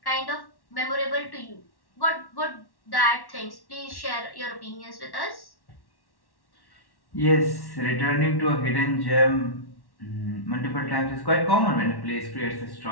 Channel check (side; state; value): right; late; 1.1 ms